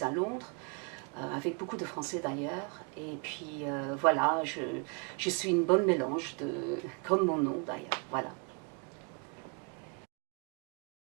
à Londres, avec beaucoup de Français d'ailleurs. Et puis voilà, je suis une bonne mélange, comme mon nom d'ailleurs. Voilà.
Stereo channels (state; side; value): quieter; left; 35.1 dB